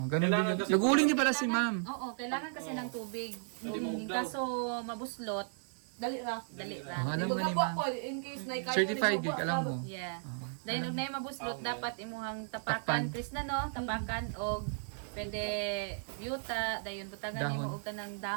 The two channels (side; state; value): left; silent; digital silence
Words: ganun din. Nag-uuling din pala si ma'am. Oo, kailangan kasi ng tubig. Kaso mabuslot, Dali ra. dali Oh, ra. alam mo ni Magkapo ma'am. ako in case na ikaw. Certified gig, alam mo. Yeah. Dahil nung na mabuslot, dapat imuhang tapakan, Takpan. Chris na no? Tapakan o pwede yuta, dayon butagan Dahon. mo og kanang